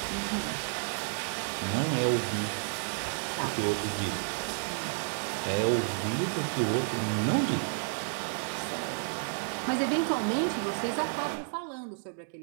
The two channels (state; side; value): silent; left; digital silence